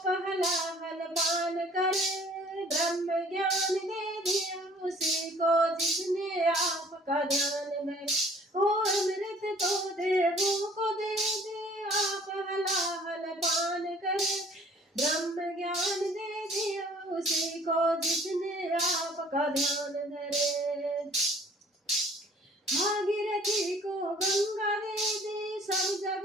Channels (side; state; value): both; normal; correlation 0.54